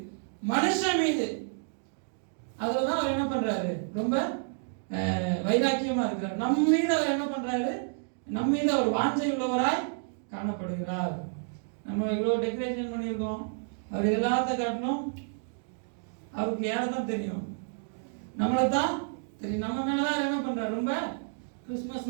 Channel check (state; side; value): silent; left; digital silence